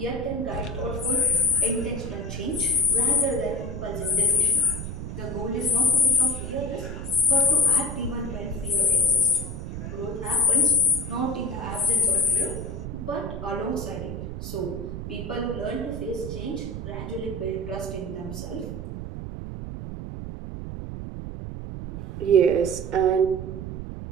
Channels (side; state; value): right; noise; rumble, 7 dB below the sound